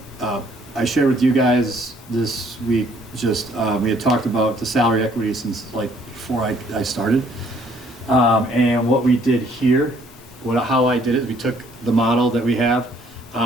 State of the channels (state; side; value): normal; both; correlation 0.63